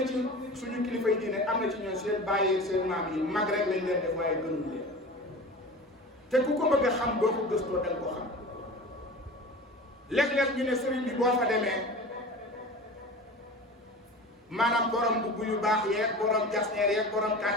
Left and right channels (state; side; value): normal; both; correlation 0.35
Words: ci suñu kilifa yi diine am na ci ñoom seen bàyyi seen maam yi mag rek lañ leen def waaye gënuñ leen te ku ko bëgg a xam boo ko gëstoo danga ko xam léeg-léeg ñu ne sëriñ bi boo fa demee maanaam borom mbubb yu baax yeeg borom jasneer yeeg borom